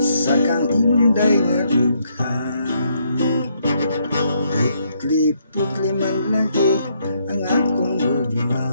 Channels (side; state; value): both; inverted; correlation -0.73